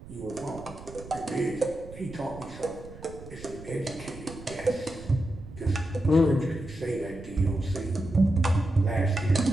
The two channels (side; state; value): right; noise; rumble, 16 dB below the sound